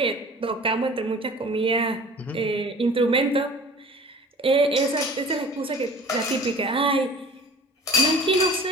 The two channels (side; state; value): both; normal; correlation 0.44